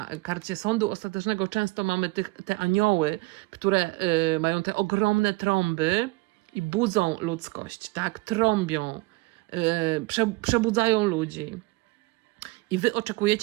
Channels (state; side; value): quieter; left; 22.5 dB